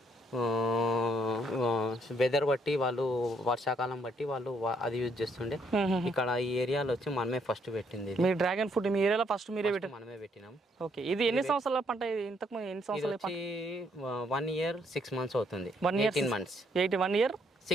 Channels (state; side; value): normal; both; correlation 0.70